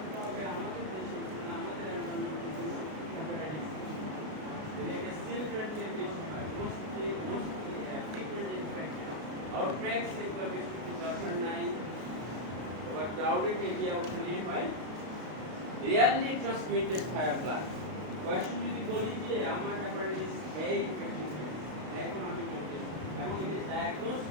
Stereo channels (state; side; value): late; left; 32 ms